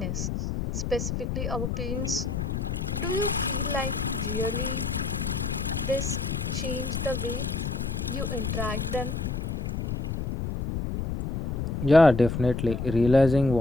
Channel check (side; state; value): left; noise; rumble, 2 dB below the sound